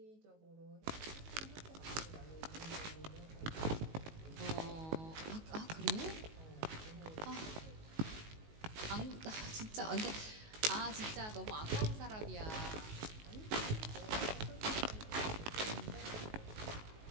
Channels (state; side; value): late; left; 19 ms